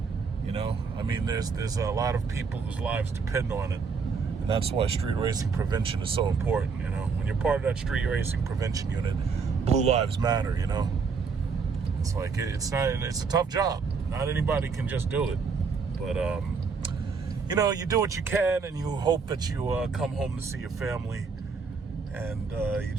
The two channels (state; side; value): quieter; left; 5.1 dB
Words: You know, I mean, there's a lot of people whose lives depend on it. And that's why street racing prevention is so important, you know. When you're part of that street racing prevention unit, blue lives matter, you know. It's like, it's a tough job. Not anybody can just do it. But, you know, you do what you can, and you hope that you come home to see your family. And you